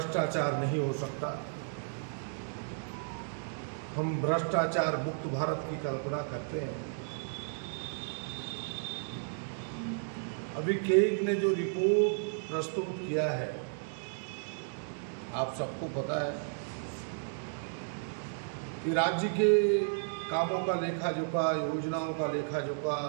नहीं हो सकता, हम भ्रष्टाचार मुक्त भारत की कल्पना करते हैं। अभी केग ने जो रिपोर्ट प्रस्तुत किया है, आप सबको पता है कि राज्य के कामों का लेखा जोखा, योजनाओं का लेखा जोखा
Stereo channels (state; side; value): silent; left; digital silence